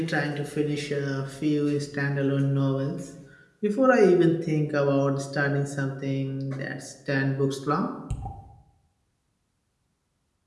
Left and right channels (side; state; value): both; identical; correlation 1.00